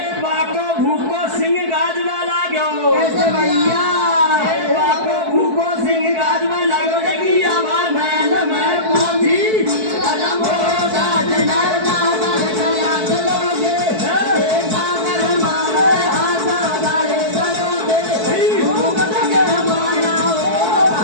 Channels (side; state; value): left; late; 4.6 ms